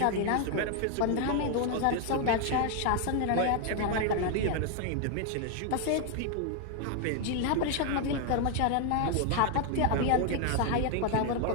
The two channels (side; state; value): both; different; correlation 0.00